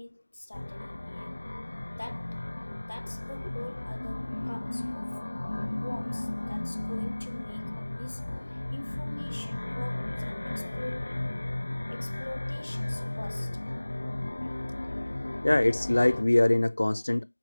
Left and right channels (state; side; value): inverted; both; correlation -1.00